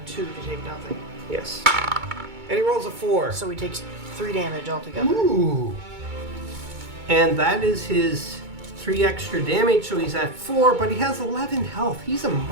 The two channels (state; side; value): late; left; 2.2 ms